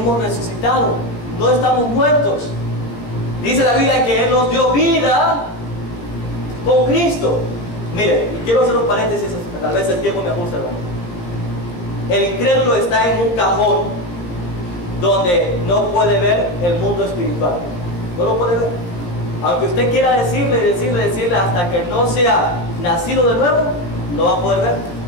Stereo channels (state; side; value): late; right; 17 ms